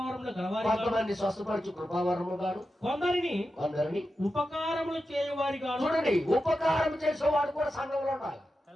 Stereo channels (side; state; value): both; normal; correlation 0.90